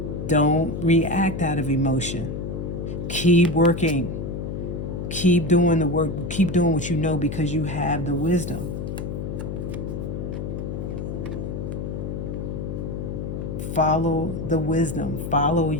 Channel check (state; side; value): noise; left; hum, 5 dB below the sound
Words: Don't react out of emotion. Keep working. Keep doing the work. Keep doing what you know, because you have the wisdom. Follow the wisdom. Follow